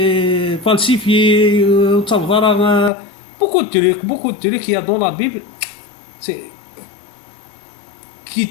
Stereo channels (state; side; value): drops out; right; at 2.9 s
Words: falsifiés ونتصاوب على beaucoup de trucs qu'il y a dans la Bible c'est qui